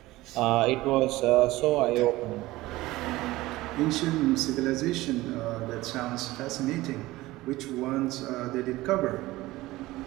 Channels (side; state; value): left; quieter; 18.4 dB